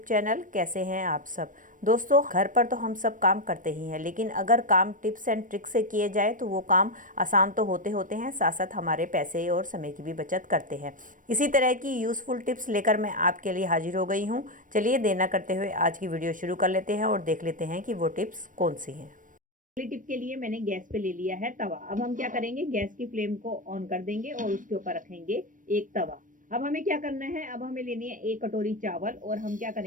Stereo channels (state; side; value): late; left; 0.38 ms